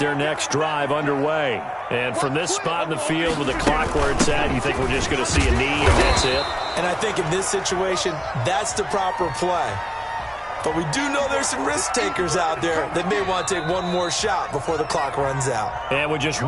next drive underway. And from this spot in the field with the clock where it's at, you think we're just going to see a knee and that's it? And I think in this situation, that's the proper play. But we do know there's some risk takers out there that may want to take one more shot before the clock runs out. And with just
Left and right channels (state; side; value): identical; both; correlation 1.00